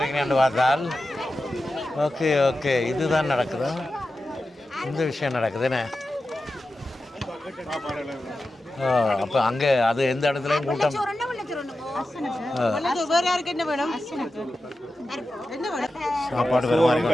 பார்த்தால் ஓகே ஓகே இதுதான் நடக்குதா இந்த விஷயம் நடக்குது என்ன அப்போ அங்கே அது எந்த இடத்துலையும் கூட்டம் சாப்பாடு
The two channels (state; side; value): normal; both; correlation 0.92